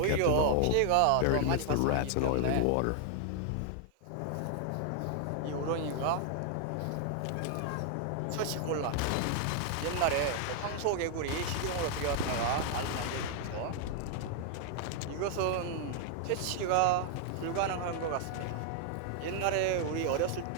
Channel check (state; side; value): different; both; correlation 0.00